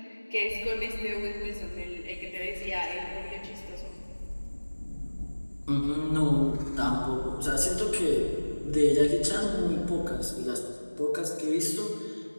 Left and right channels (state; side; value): inverted; both; correlation -1.00